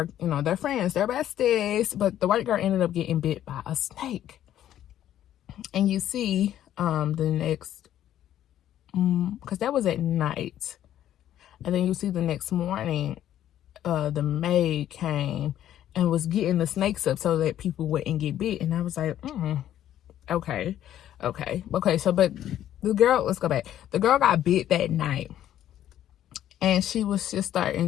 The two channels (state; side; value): quieter; right; 11.6 dB